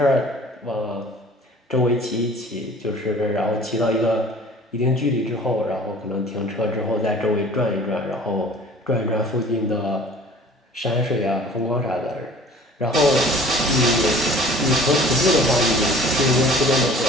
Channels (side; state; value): both; normal; correlation 0.47